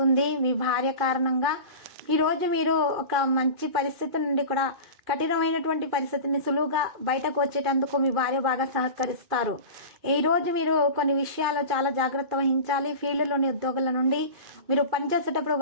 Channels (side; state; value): left; late; 2.4 ms